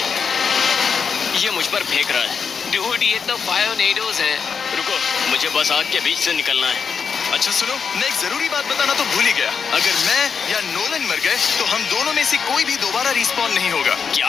ये मुझ पर फेंक रहा है। डूड, ये तो फायोनेडोज है। रुको, मुझे बस आग के बीच से निकलना है। अच्छा सुनो, मैं एक जरूरी बात बताना तो भूल ही गया। अगर मैं या नोलन मर गए तो हम दोनों में से कोई भी दोबारा रिस्पॉन नहीं होगा। क्या?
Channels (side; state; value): right; quieter; 6.1 dB